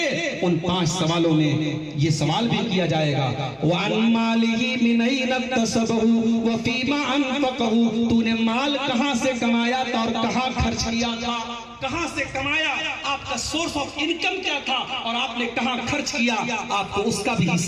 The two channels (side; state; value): both; identical; correlation 1.00